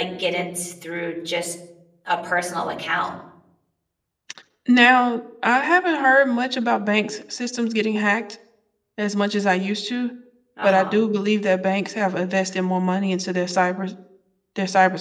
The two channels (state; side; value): identical; both; correlation 1.00